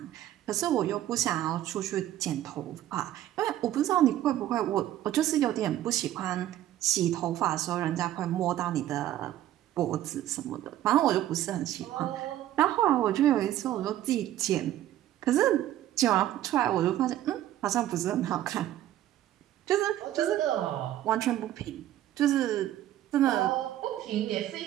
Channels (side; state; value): left; quieter; 13.0 dB